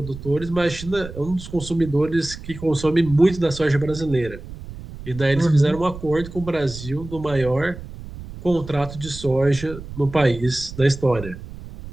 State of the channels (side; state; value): right; noise; rumble, 13 dB below the sound